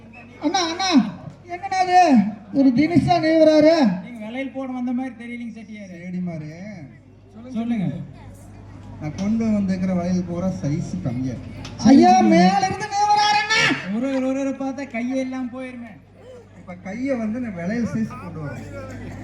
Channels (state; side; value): identical; both; correlation 1.00